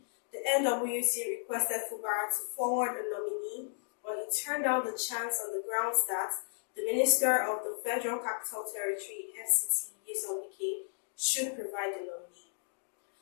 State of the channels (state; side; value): silent; right; digital silence